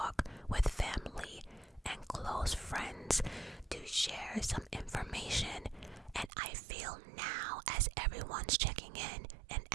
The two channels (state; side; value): drops out; left; at 6.3 s